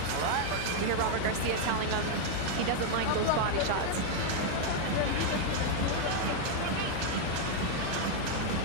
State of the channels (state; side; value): different; both; correlation 0.00